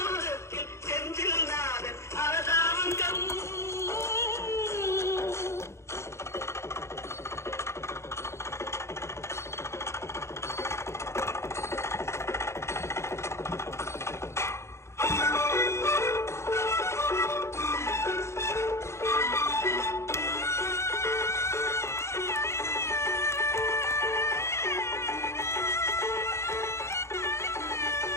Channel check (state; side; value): late; right; 0.13 ms